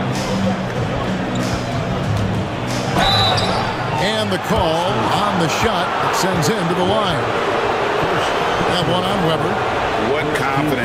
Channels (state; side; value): identical; both; correlation 1.00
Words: And the call on the shot that sends him to the line. That one on Weber. What